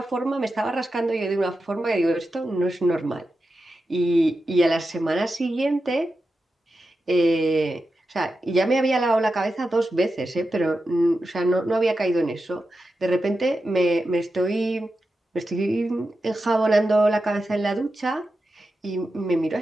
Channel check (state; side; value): normal; both; correlation 0.90